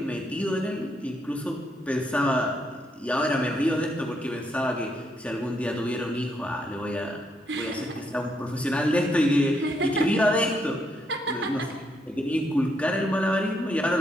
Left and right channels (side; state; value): both; normal; correlation 0.76